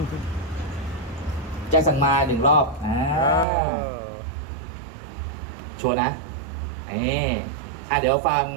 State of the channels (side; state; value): left; drops out; at 3.5 s